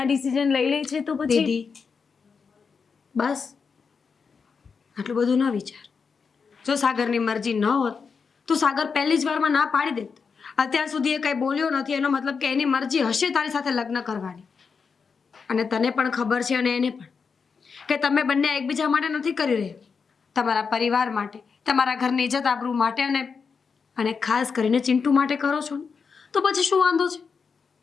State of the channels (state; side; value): quieter; right; 5.5 dB